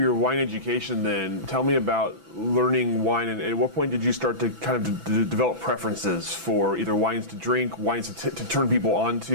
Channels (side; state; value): left; late; 6.0 ms